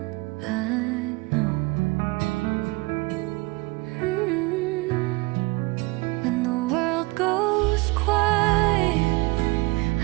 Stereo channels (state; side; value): quieter; left; 24.2 dB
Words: I know. When the world goes quiet,